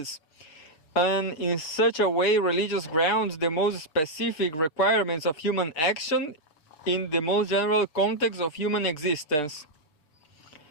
and in such a way religious grounds the most specific requirements of human action in the most general context of human existence.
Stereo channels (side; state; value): right; late; 6.6 ms